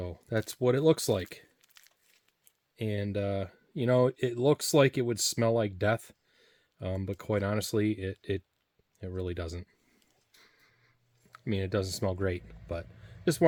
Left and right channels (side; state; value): both; identical; correlation 1.00